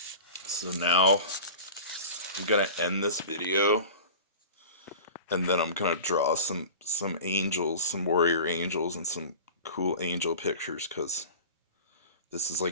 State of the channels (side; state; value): both; inverted; correlation -0.36